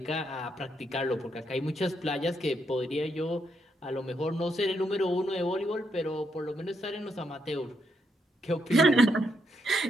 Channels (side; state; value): both; normal; correlation 0.78